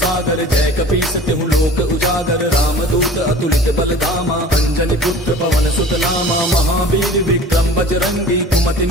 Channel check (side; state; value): both; normal; correlation 0.43